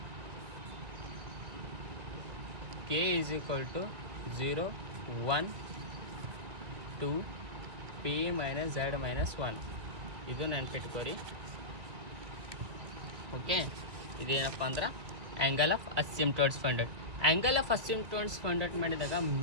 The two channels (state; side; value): late; left; 1.9 ms